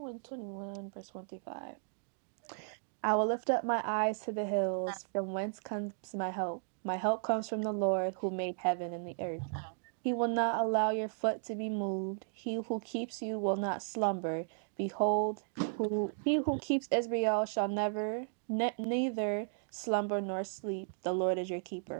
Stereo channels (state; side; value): silent; left; digital silence